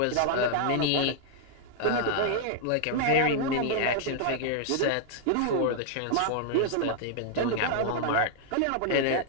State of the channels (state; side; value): different; both; correlation -0.01